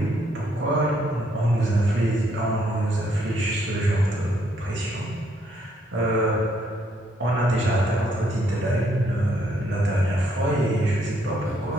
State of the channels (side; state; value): both; normal; correlation 0.71